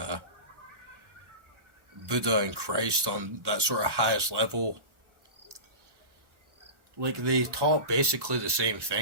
Buddha and Christ on that sort of highest level. Like, they taught basically the same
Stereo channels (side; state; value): left; late; 1.1 ms